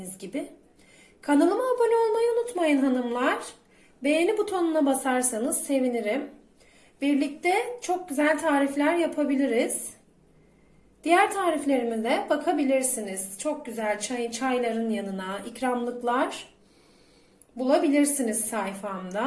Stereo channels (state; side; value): identical; both; correlation 1.00